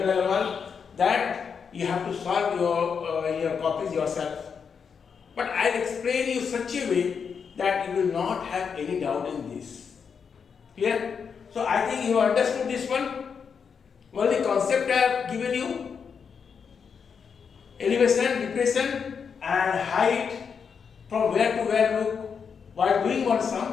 level, that you have to solve your copies yourself. But I will explain you such a way that you will not have any doubt in this. Clear? So I think you understood this one. Only concept I have given you. Elevation, depression and height, from where to where look while doing one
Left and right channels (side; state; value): right; quieter; 6.4 dB